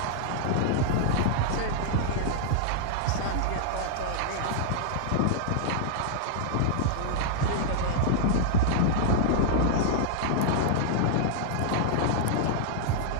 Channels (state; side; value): different; both; correlation -0.01